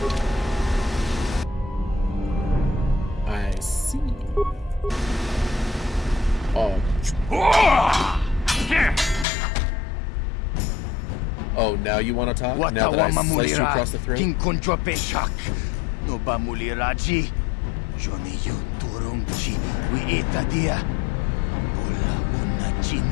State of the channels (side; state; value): right; drops out; at 9.2 s